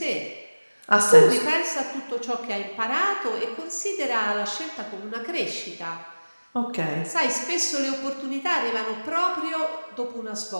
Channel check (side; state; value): both; inverted; correlation -1.00